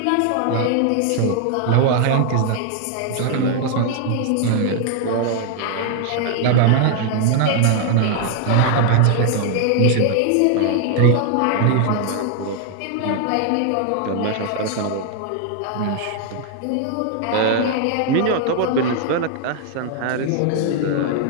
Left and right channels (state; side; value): different; both; correlation 0.00